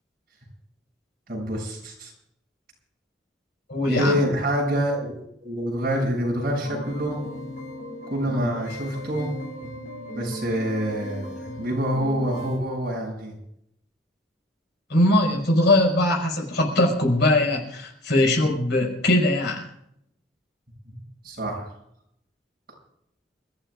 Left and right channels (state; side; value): normal; both; correlation 0.46